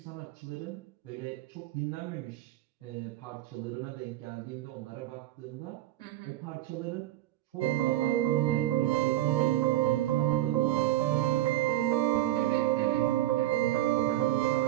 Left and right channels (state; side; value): quieter; left; 14.2 dB